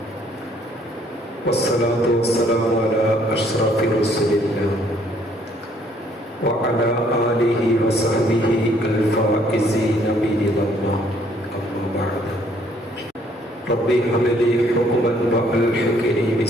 والصلاة والسلام على أشرف رسول الله وعلى آله وصحبه الفائزين برضا الله. أما بعد، ربي هب لي حكما وألحقني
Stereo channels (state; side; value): normal; both; correlation 0.64